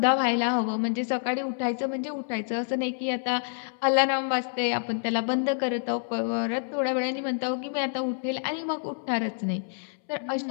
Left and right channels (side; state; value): right; silent; 60 dB below the other